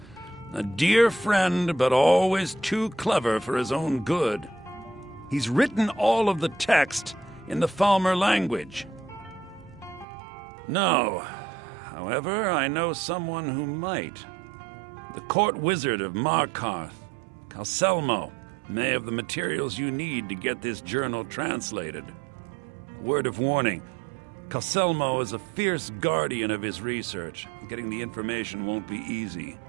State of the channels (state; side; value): drops out; left; at 10.1 s